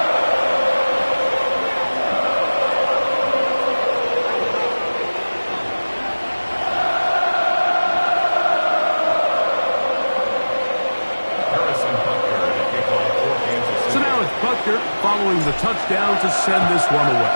Following the touchdown to send this one away.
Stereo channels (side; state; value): both; inverted; correlation -1.00